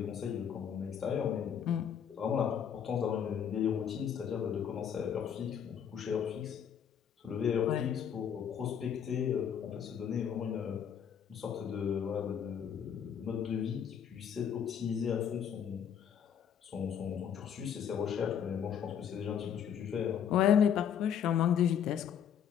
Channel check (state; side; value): quieter; right; 8.4 dB